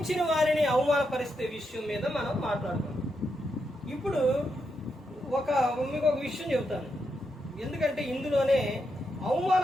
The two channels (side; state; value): both; normal; correlation 0.83